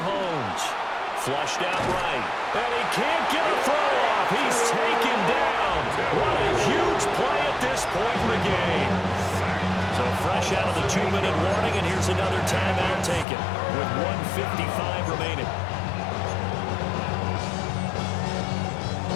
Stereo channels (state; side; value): drops out; right; at 13.2 s